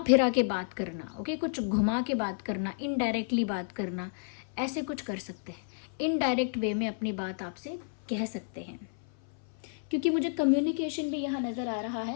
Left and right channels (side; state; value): right; silent; 55 dB below the other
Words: फिरा के बात करना, ओके, कुछ घुमा के बात करना, इनडायरेक्टली बात करना, ऐसे कुछ कर सकते हैं। इनडायरेक्ट वे में अपनी बात आपसे कह सकते हैं, क्योंकि मुझे कम्युनिकेशन भी यहाँ नज़र आ रहा